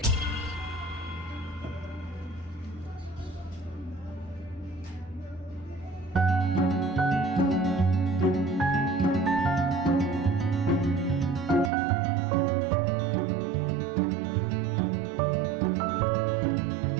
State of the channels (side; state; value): left; drops out; at 11.7 s